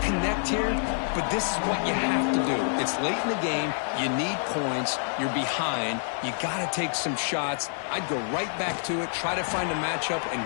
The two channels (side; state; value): right; silent; digital silence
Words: connect here, but this is what you have to do. It's late in the game. You need points. You're behind. You got to take some shots. I'd go right back to it, try to find a matchup, and